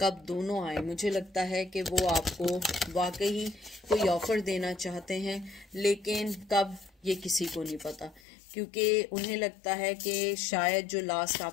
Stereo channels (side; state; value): right; drops out; at 8.2 s